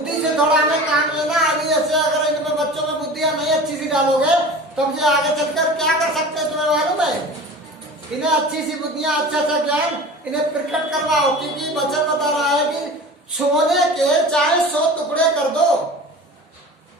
से थोड़ा हमें काम लेना। अभी ऐसे अगर इनमें बच्चों में बुद्धियां नहीं अच्छी सी डालोगे, तब ये आगे चलकर क्या कर सकते हैं तुम्हें मालूम है? इन्हें अच्छी सी बुद्धियां, अच्छा ज्ञान इन्हें प्रकट करवाओ, क्योंकि वचन बता रहा है कि सोने के चाहे 100 टुकड़े कर दो,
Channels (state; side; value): normal; both; correlation 0.37